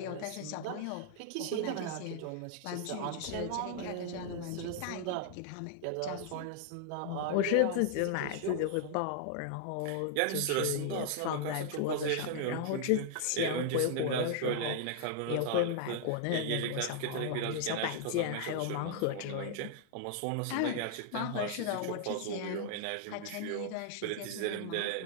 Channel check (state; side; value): different; both; correlation 0.00